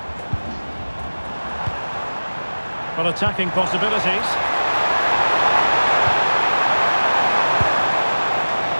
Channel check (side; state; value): both; inverted; correlation -1.00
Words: Well, attacking possibilities.